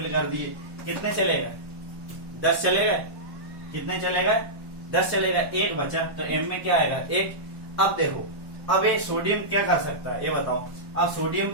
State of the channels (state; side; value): late; left; 1.1 ms